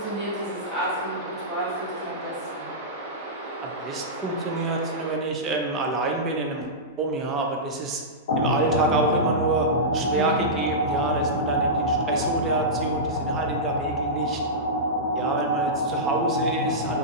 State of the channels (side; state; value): both; normal; correlation -0.14